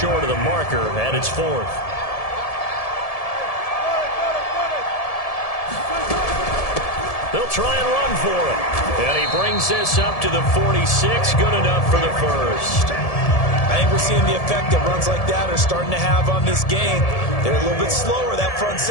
of the marker, and it's fourth. They'll try and run for it. And he brings this up to the 46. Good enough for the first. I think we're seeing the effect that runs like that are starting to have on this game. They're a little bit slower, that front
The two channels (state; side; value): late; right; 1.7 ms